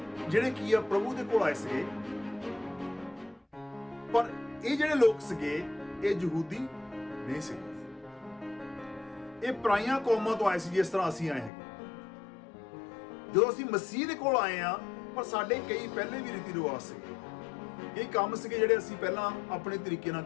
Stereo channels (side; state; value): right; drops out; at 11.5 s